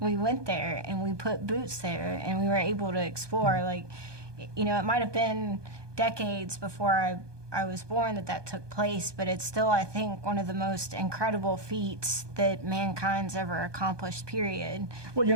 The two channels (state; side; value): late; left; 1.2 ms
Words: went there and we put boots there and we were able to explore. Like, you know, it might have been decades before I was born that took place, but it's still, I think, one of the most incredible feats that mankind's ever accomplished, period. Well, you